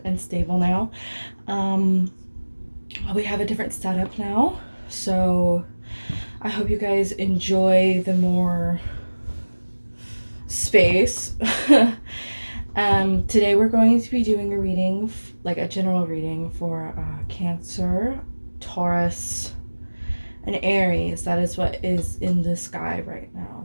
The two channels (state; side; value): inverted; both; correlation -1.00